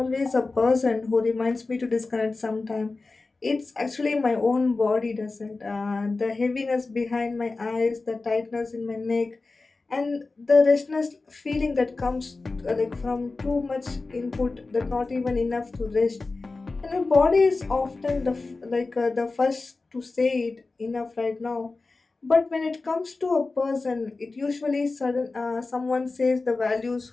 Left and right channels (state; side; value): quieter; right; 3.7 dB